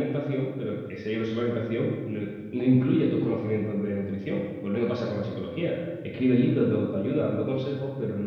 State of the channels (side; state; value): both; identical; correlation 1.00